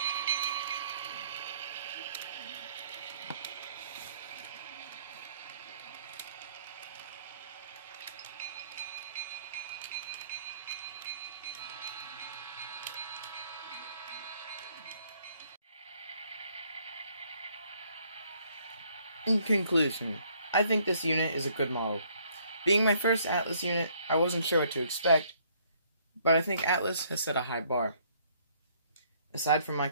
In conclusion, I think this unit is a good model. Being my first Atlas unit, I wasn't sure what to expect, but I think Atlas has set a high bar. Aside from my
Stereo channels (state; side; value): inverted; both; correlation -0.65